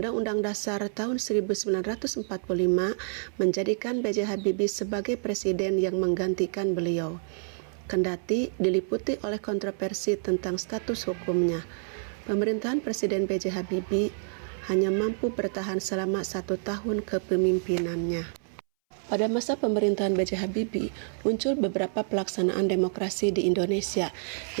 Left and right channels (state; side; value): silent; left; 59 dB below the other